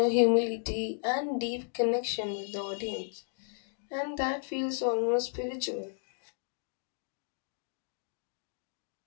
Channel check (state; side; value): silent; right; 55 dB below the other